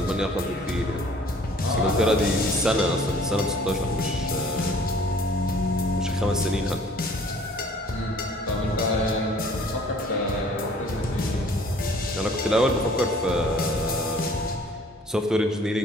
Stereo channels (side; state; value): both; normal; correlation 0.54